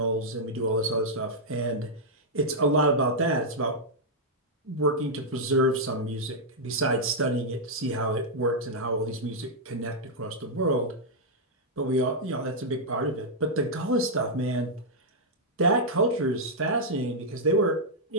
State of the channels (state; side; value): normal; both; correlation -0.06